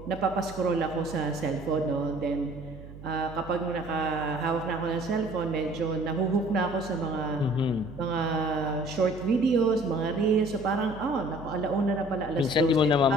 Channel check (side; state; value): right; noise; hum, 15 dB below the sound